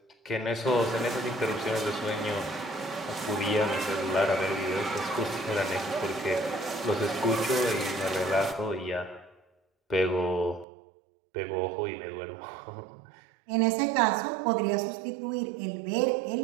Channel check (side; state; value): left; drops out; at 10.7 s